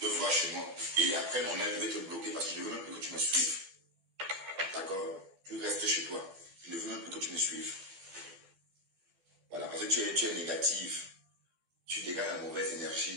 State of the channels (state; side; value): late; left; 12 ms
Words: de voir chez moi. Et après, mon âme, je vais te bloquer parce que je ne veux même plus que tu me suives. D'accord? Tu restes chez toi. Je ne veux même plus que tu me suives. Voilà. Parce que tu es négative. Tu dégages la mauvaise